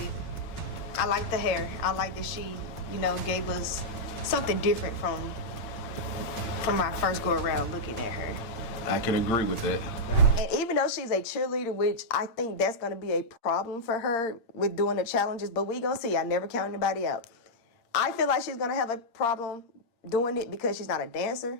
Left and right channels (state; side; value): late; right; 8.7 ms